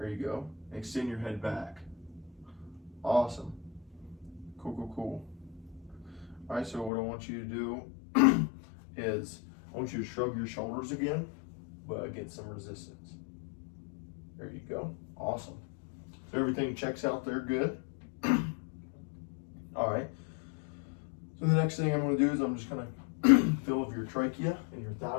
you go. Extend your head back. Awesome. Cool, cool, cool. All right, so what I want you to do is I want you to shrug your shoulders again, but get some resistance. There you go. Awesome. So everything checks out there good. All right. So the next thing I'm going to do is I'm just going to feel of your trachea and your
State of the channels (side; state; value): right; drops out; at 6.9 s